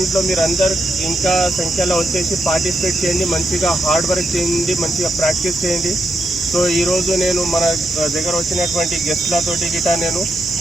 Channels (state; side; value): normal; both; correlation 0.82